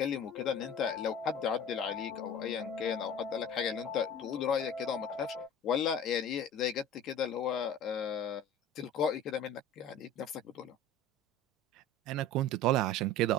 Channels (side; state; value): both; normal; correlation 0.38